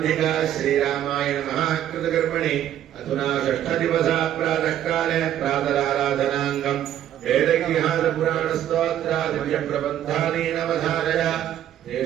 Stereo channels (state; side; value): quieter; left; 11.2 dB